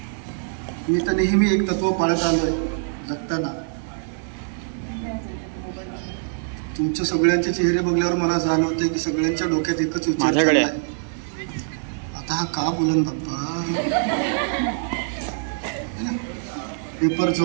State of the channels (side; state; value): left; silent; 63 dB below the other